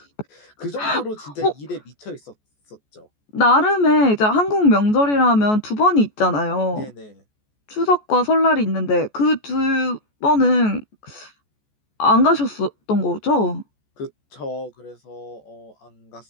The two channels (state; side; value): late; right; 14 ms